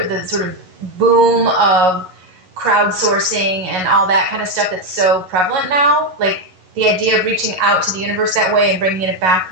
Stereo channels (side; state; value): left; late; 11 ms